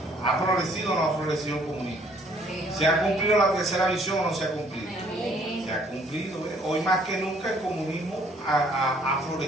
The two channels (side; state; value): both; normal; correlation 0.62